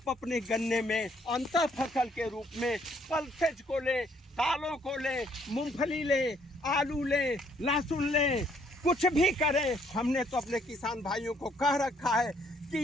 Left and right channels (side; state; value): both; normal; correlation 0.66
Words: अपने गन्ने में अंतर फसल के रूप में पल्सेज को लें, दालों को लें, मूंगफली लें, आलू लें, लहसुन लें, कुछ भी करें। हमने तो अपने किसान भाइयों को कह रखा है